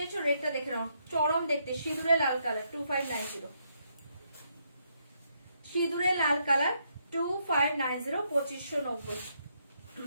রেডটা দেখে নাও, চরম দেখতে, সিঁদুরে লাল কালার 2590। সিঁদুরে লাল কালার 2590 2590।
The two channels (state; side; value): inverted; both; correlation -0.76